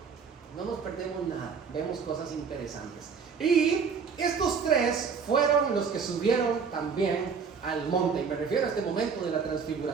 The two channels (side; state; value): left; quieter; 5.9 dB